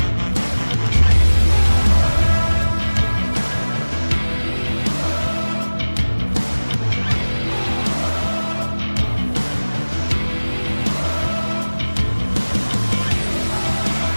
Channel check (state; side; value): inverted; both; correlation -1.00